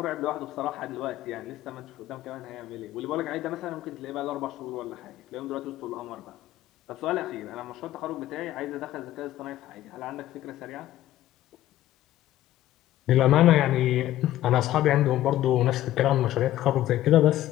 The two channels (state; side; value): quieter; right; 14.0 dB